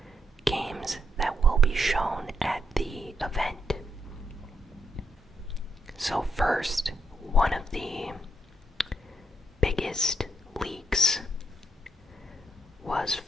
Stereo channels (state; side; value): normal; both; correlation 0.78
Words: games that will be shown at the event. So first, one of the biggest leaks was